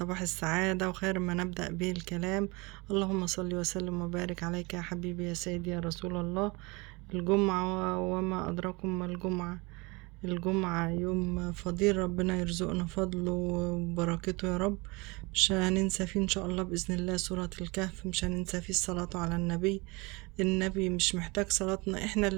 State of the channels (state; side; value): quieter; left; 25.9 dB